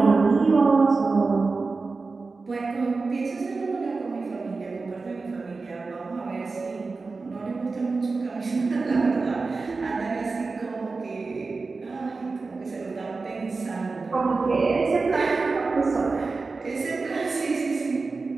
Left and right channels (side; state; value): left; quieter; 4.0 dB